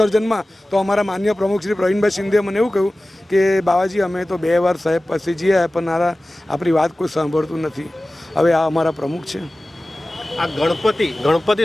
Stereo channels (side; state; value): both; normal; correlation 0.97